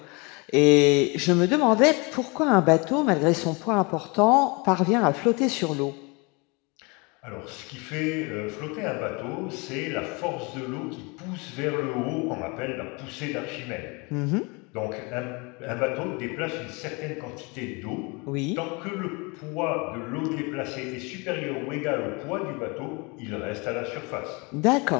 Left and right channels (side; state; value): right; quieter; 28.8 dB